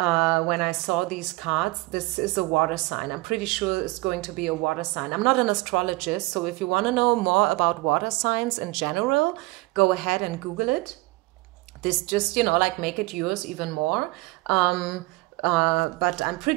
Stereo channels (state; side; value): quieter; left; 22.2 dB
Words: I saw these cards. This is a water sign. I'm pretty sure it's going to be a water sign. I'm not an astrologist, so if you want to know more about water signs in general, go ahead and Google it. This just, you know, like make it yours even more. But I'm